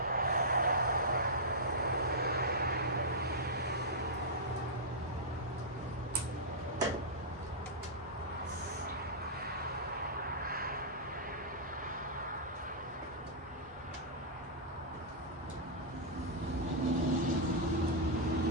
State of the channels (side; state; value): both; normal; correlation -0.11